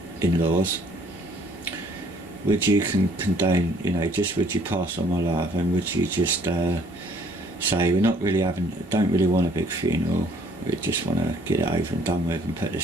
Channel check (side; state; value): both; normal; correlation 0.60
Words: in-laws. Would you condone, just would you pass on my love, and would you just say we're not really don't really want a big funeral, we just want to get it over and done with and put